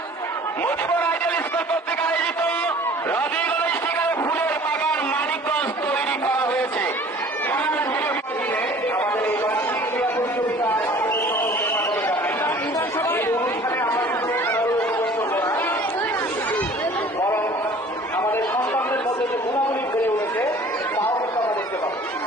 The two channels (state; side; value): normal; both; correlation 0.48